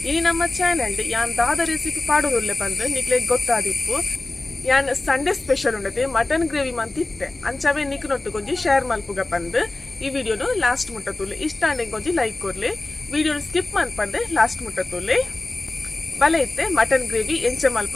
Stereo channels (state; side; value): quieter; right; 3.0 dB